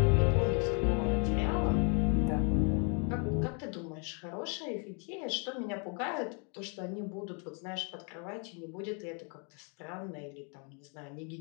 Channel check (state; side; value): quieter; right; 37.7 dB